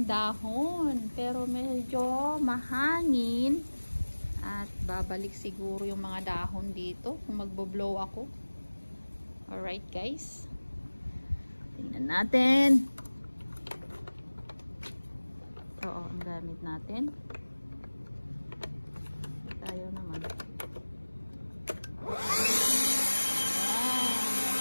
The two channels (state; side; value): inverted; both; correlation -1.00